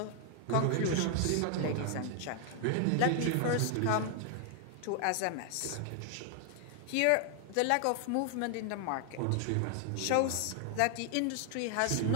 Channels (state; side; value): different; both; correlation 0.00